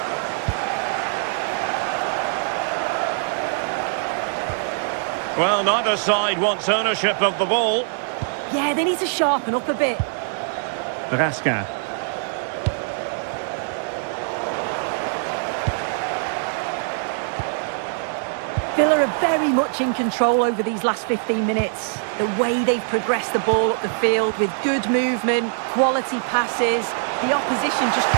Well, neither side wants ownership of the ball. Yeah, they need to sharpen up a bit. Raskin. Villa are very much in control over these last 15 minutes. The way they've progressed the ball up the field with good movement, quality passes. The opposition just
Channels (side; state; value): left; silent; digital silence